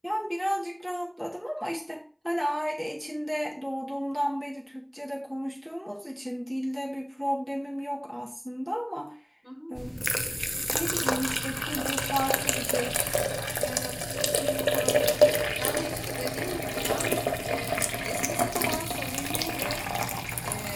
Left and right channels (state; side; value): identical; both; correlation 1.00